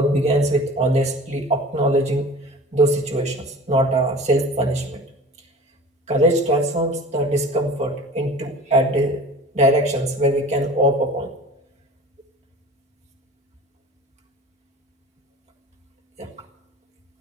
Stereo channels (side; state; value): both; normal; correlation 0.40